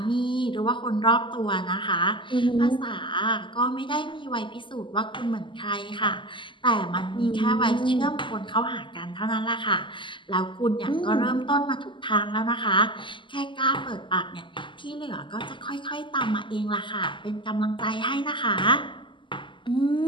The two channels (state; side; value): late; right; 0.24 ms